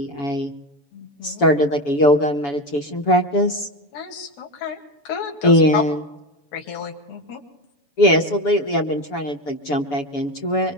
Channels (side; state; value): right; late; 7.0 ms